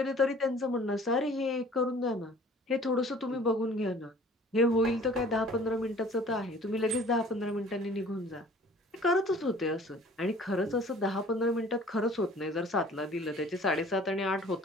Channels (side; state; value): both; normal; correlation 0.51